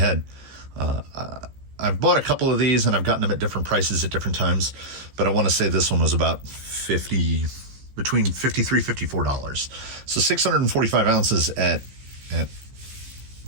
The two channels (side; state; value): left; late; 15 ms